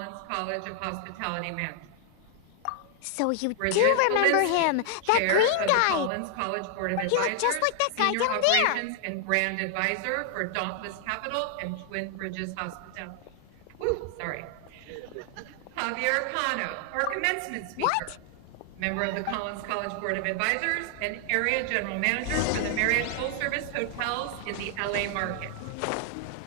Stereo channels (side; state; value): both; different; correlation 0.00